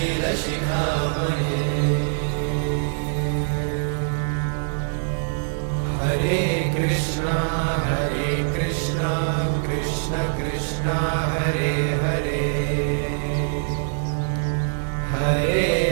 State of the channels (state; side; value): silent; left; digital silence